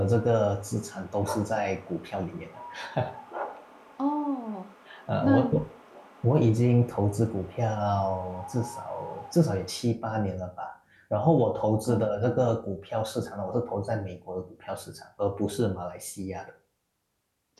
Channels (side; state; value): both; identical; correlation 1.00